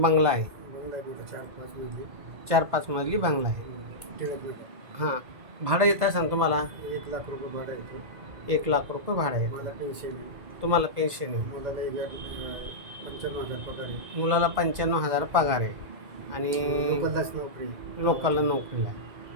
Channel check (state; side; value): late; left; 2.0 ms